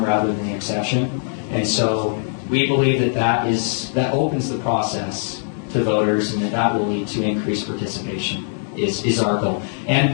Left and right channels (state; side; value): silent; right; digital silence